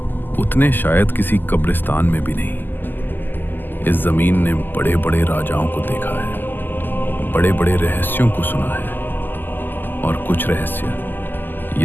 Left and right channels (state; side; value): late; right; 0.090 ms